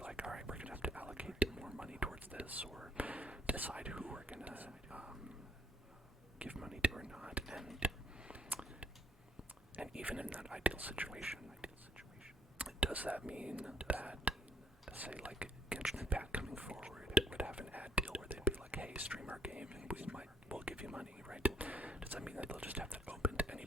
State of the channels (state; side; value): normal; both; correlation 0.66